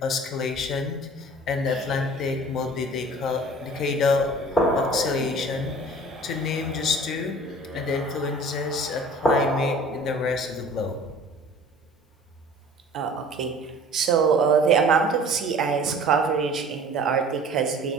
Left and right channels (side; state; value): both; normal; correlation 0.46